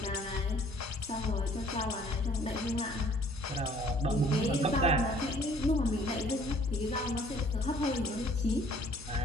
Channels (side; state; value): both; normal; correlation 0.57